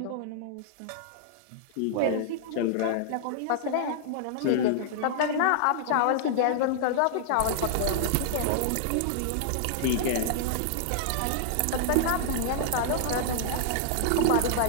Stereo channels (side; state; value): both; different; correlation -0.01